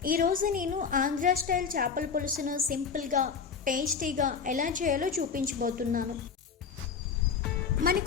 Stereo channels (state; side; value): quieter; right; 6.1 dB